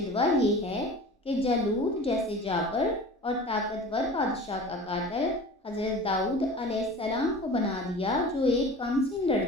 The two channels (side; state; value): both; normal; correlation 0.39